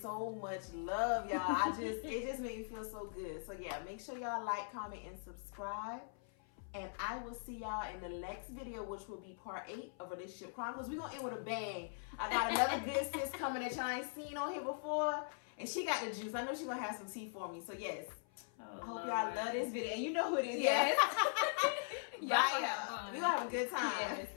so much love, y'all. It just made me feel so good. So yeah, make sure y'all like, comment, and subscribe. And I will see y'all in the next video, which will be part 8 of Relationship Chronicles. We're going to end with a bang. I got another good sis coming that y'all ain't seen on here before. And she got the juice. I know she's going to have some tea for me. So, yes. I hope y'all love this video. And you know who it is. Yes. Bye, y'all. We're going to have a good time.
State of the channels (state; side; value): silent; right; 51 dB below the other